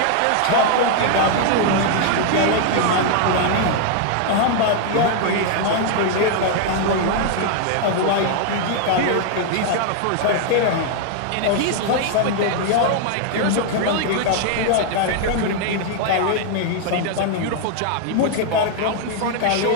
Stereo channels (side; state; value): both; different; correlation 0.00